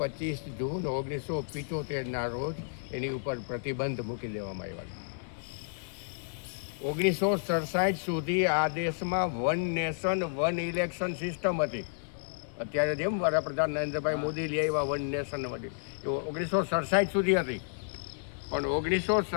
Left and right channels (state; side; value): silent; right; digital silence